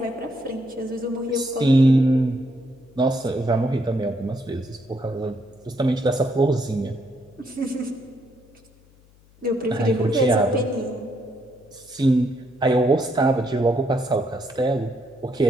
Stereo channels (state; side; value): noise; left; hum, 29 dB below the sound